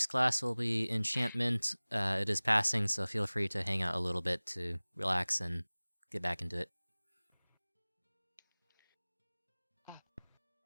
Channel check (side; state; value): both; inverted; correlation -1.00